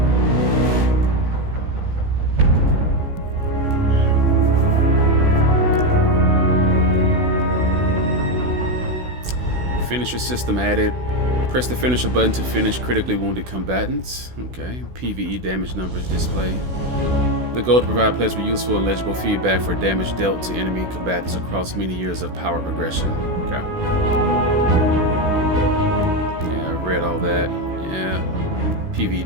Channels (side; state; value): left; late; 16 ms